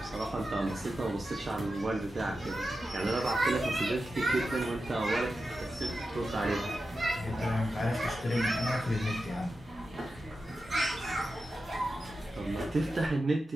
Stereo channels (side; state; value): both; normal; correlation 0.91